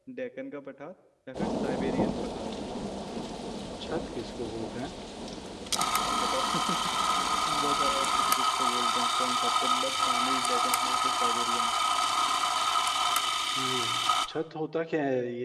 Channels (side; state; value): both; identical; correlation 1.00